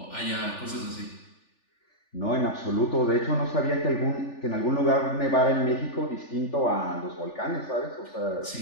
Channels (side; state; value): right; late; 3.4 ms